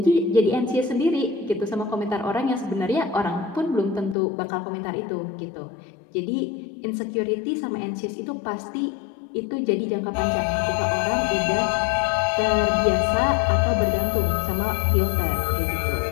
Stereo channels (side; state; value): right; drops out; at 4.2 s